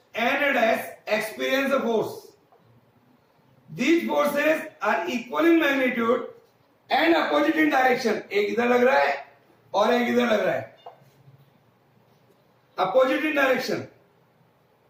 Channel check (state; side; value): identical; both; correlation 1.00